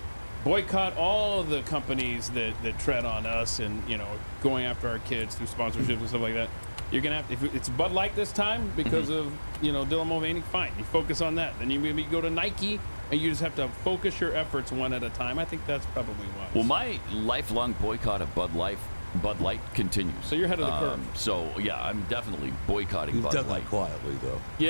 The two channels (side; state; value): both; inverted; correlation -1.00